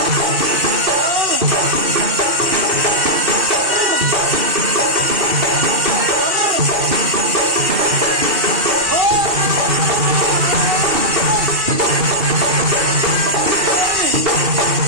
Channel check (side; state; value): left; late; 2.7 ms